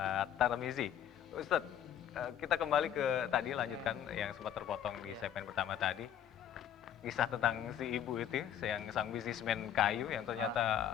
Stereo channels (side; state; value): right; quieter; 9.7 dB